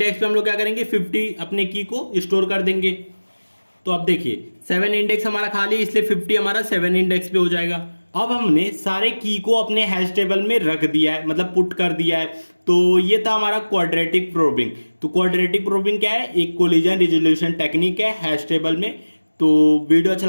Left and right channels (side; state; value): both; inverted; correlation -1.00